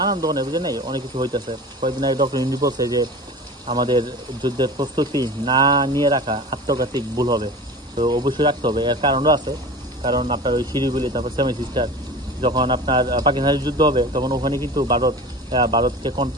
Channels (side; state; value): both; normal; correlation 0.34